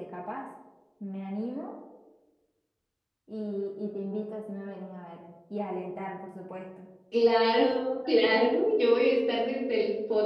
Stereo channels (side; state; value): both; identical; correlation 1.00